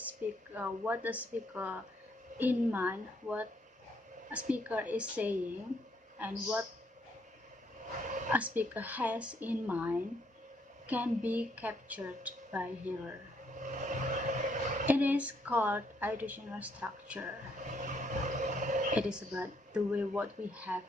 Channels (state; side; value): normal; both; correlation 0.71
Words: what the speaker in mind, what a speaker is saying, and what a speaker has in mind can be captured by hearer. It is called auditional structure. It is about the way what we have